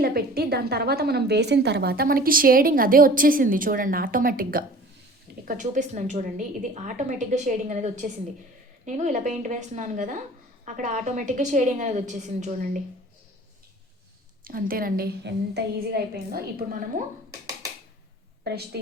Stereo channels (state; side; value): normal; both; correlation 0.45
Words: పెట్టి దాని తర్వాత మనం వేసిన తర్వాత మనకి షేడింగ్ అదే వచ్చేసింది చూడండి ఆటోమేటిక్గా. ఇక్కడ చూపిస్తున్నాను చూడండి, ఇది ఆటోమేటిక్గా షేడింగ్ అనేది వచ్చేసింది. నేను ఇలా పెయింట్ వేస్తున్నాను కదా, అక్కడ ఆటోమేటిక్గా షేడింగ్ అనేది వచ్చేసింది చూడండి. అంతేనండి, ఎంత ఈజీగా అయిపోయిందో. ఇప్పుడు మనము బ్రష్